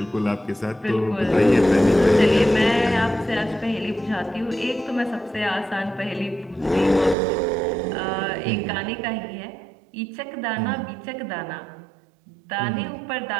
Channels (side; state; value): left; drops out; at 7.2 s